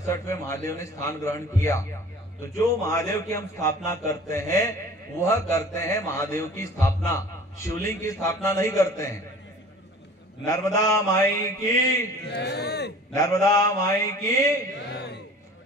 महादेव ने स्थान ग्रहण किया। तो जो महादेव की हम स्थापना करते हैं, वह करते हैं महादेव की स्थापना, शिवलिंग की स्थापना नहीं करते हैं। नर्मदा माई की, नर्मदा माई की।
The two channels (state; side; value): normal; both; correlation 0.45